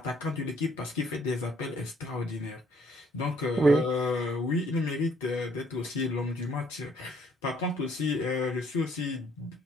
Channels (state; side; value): normal; both; correlation 0.64